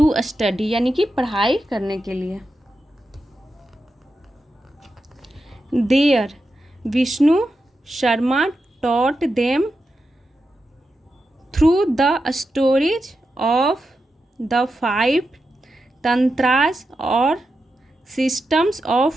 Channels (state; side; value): normal; both; correlation 0.89